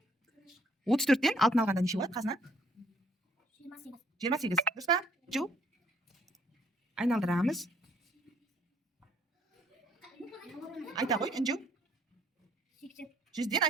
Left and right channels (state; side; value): normal; both; correlation 0.63